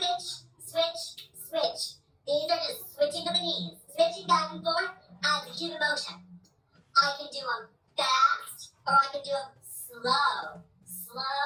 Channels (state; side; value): identical; both; correlation 1.00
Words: switch, switch. These are just switching of the knees, switching back and forth as a human motion. I can do them fast, or I can do them slow,